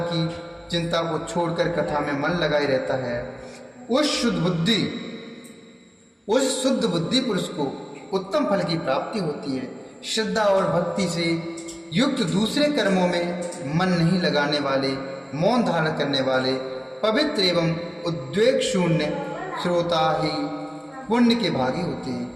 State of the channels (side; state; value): both; identical; correlation 1.00